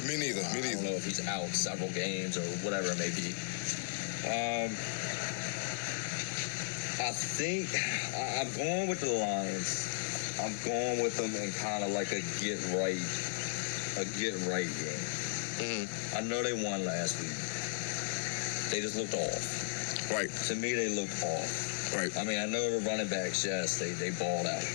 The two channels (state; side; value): silent; right; 54 dB below the other